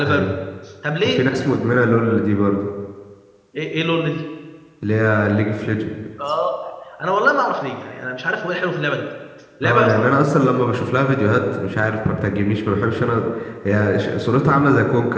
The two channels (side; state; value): both; identical; correlation 1.00